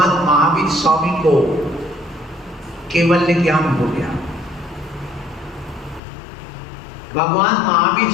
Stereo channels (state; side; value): drops out; right; at 6.0 s